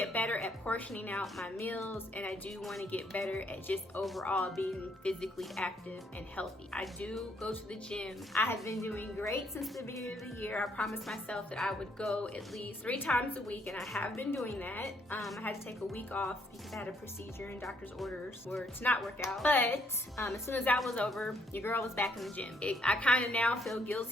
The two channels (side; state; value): both; normal; correlation 0.70